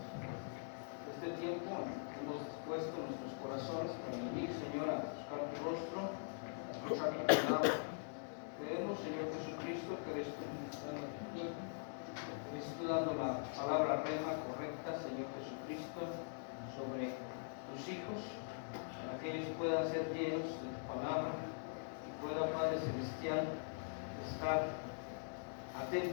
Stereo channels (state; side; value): silent; right; digital silence